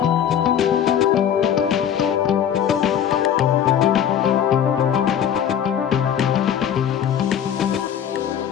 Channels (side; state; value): right; quieter; 9.2 dB